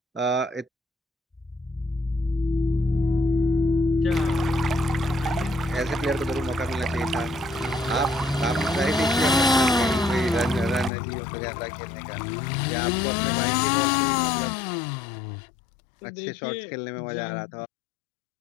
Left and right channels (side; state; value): right; drops out; at 10.9 s